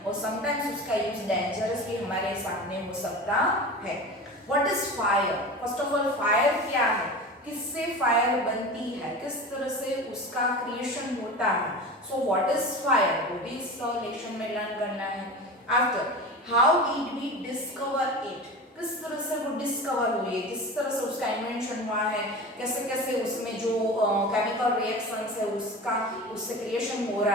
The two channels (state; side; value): normal; both; correlation 0.31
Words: और sometimes उसका use dangerous भी हमारे सामने हो सकता है. What is fire? First of all, fire क्या है, किससे फायर बनती है, किस तरह से उसका क्रिएशन होता है. सो व्हाट इज फायर, वो भी इस लेक्चर में लर्न करना है. After, how did we discover it, किस तरह से वो डिस्कवर हुई है, किस तरह से उसका इन्वेंशन हुआ है, कैसे कैसे उसमें जो केमिकल रिएक्शंस है उसका उससे क्रिएशन हो